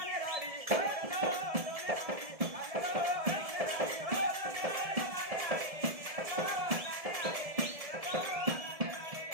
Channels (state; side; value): late; left; 1.7 ms